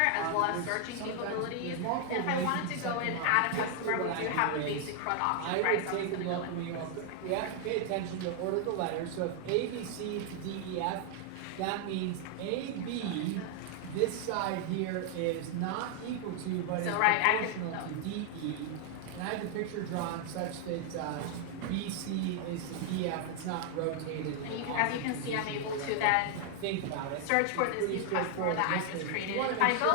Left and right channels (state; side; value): different; both; correlation 0.00